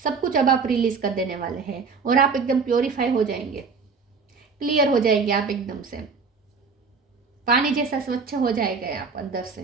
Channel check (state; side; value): quieter; left; 5.0 dB